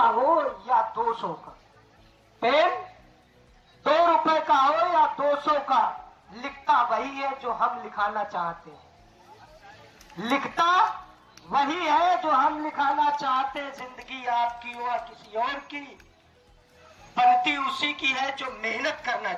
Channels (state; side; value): identical; both; correlation 1.00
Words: या 200 का, पेन 2 रुपए का हो या 200 का, लिखता वही है जो हम लिखाना चाहते हैं। लिखता वही है जो हम लिखाना चाहते हैं। जिंदगी आपकी हो या किसी और की, बनती उसी की है जो मेहनत करना